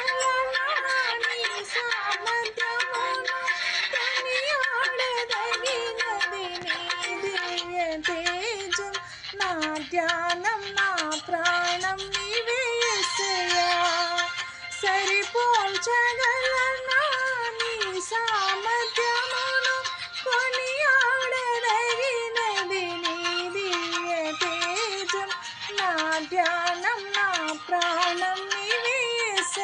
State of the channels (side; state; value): both; identical; correlation 1.00